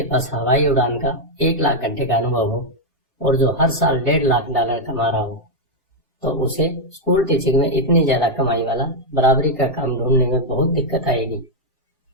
पास हवाई उड़ान का 1 लाख घंटे का अनुभव हो और जो हर साल $1.5 लाख कमा रहा हो, तो उसे स्कूल टीचिंग में इतनी ज्यादा कमाई वाला बराबरी का काम ढूंढने में बहुत दिक्कत आएगी।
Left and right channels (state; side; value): normal; both; correlation 0.00